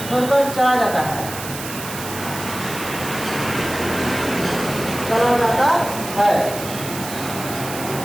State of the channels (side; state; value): right; noise; hiss, 10 dB below the sound